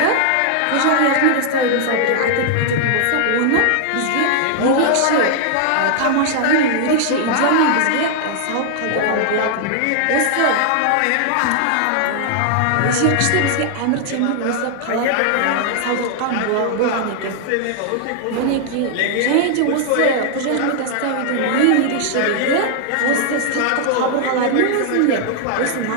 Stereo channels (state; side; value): different; both; correlation 0.00